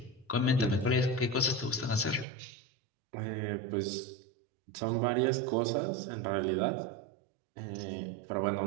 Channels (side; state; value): left; drops out; at 2.2 s